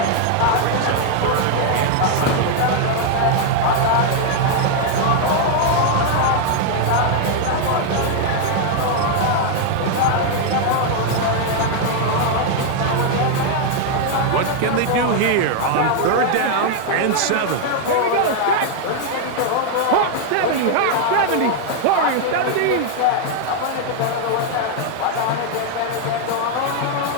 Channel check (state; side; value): different; both; correlation 0.00